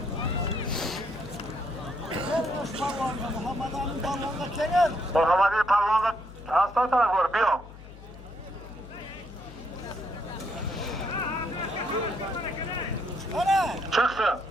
Muhammed'in Palvan'da hasta taraf var. Bir o. Çıksın.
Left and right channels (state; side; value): noise; left; hum, 17 dB below the sound